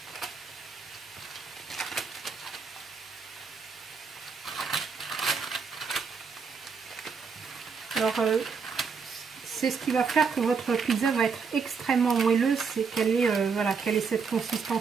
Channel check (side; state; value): left; quieter; 5.6 dB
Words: Alors, c'est ce qui va faire que votre pizza va être extrêmement moelleuse, c'est qu'elle ait, voilà, qu'elle ait cette